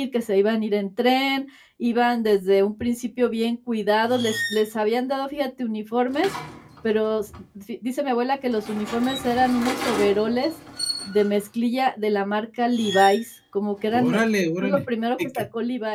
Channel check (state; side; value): identical; both; correlation 1.00